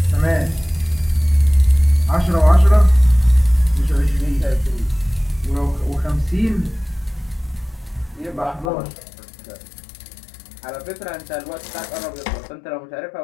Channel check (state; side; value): drops out; right; at 8.7 s